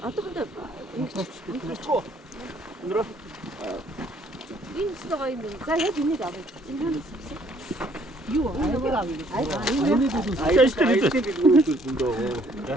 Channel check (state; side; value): normal; both; correlation 0.63